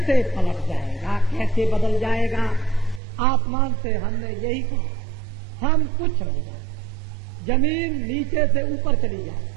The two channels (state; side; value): drops out; left; at 3.0 s